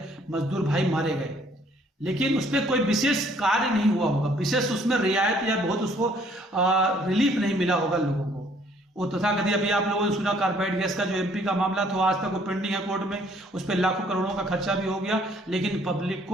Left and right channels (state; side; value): normal; both; correlation 0.62